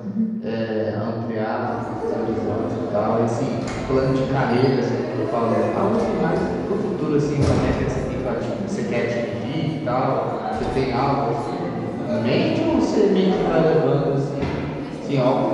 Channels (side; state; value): both; identical; correlation 1.00